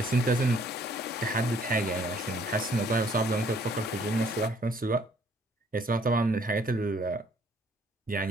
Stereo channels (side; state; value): both; normal; correlation 0.62